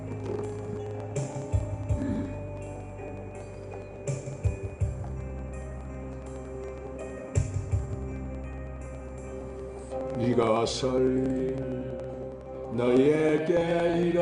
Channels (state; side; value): identical; both; correlation 1.00